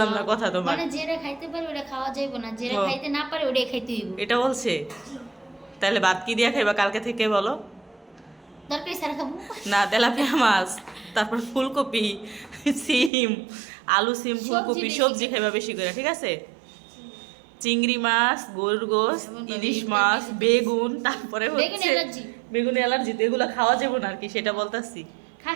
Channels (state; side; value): drops out; left; at 13.1 s